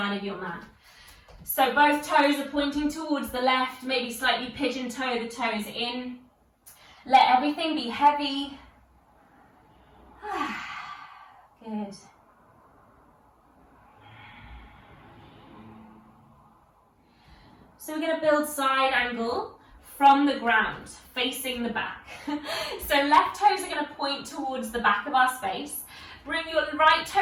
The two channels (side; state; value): both; identical; correlation 1.00